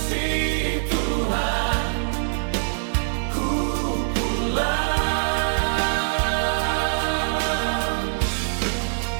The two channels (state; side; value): silent; left; digital silence